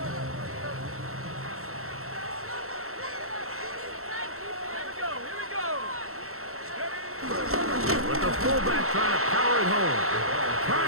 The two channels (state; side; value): late; left; 0.63 ms